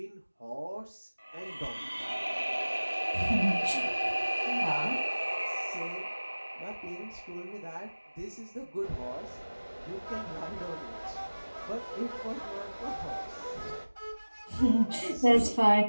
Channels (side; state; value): both; inverted; correlation -1.00